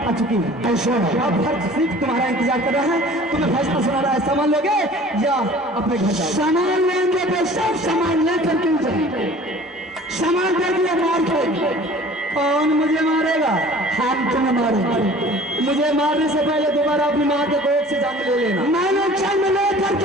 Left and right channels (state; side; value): normal; both; correlation 0.47